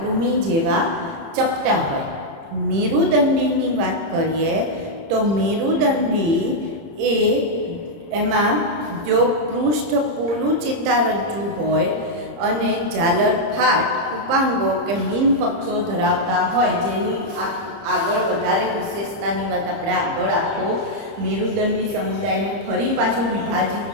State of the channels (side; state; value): left; late; 30 ms